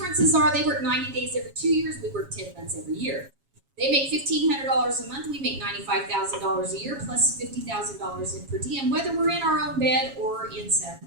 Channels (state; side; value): late; left; 7.3 ms